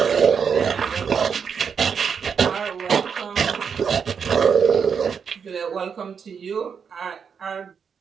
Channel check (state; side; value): quieter; left; 6.6 dB